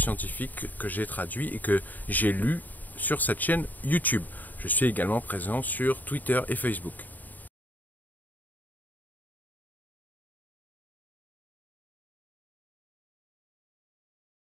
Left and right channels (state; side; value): late; right; 0.084 ms